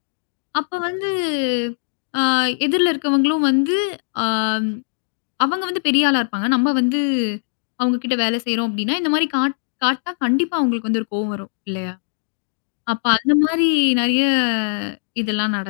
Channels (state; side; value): silent; right; digital silence